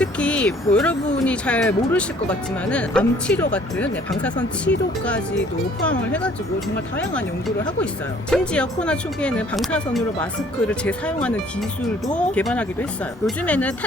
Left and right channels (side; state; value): both; normal; correlation 0.57